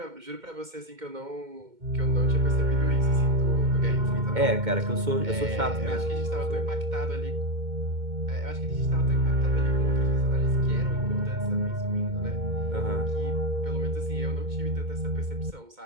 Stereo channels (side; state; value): left; late; 2.2 ms